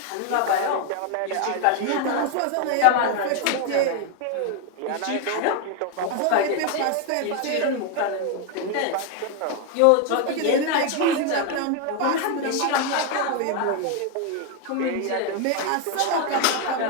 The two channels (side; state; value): both; different; correlation 0.01